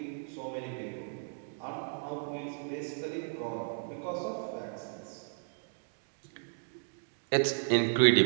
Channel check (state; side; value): silent; left; digital silence